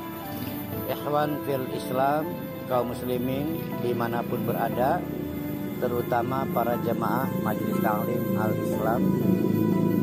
Ikhwan fil Islam, kaum muslimin dimanapun berada, terutama para jamaah Majelis Taklim Al-Islam.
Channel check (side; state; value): both; identical; correlation 1.00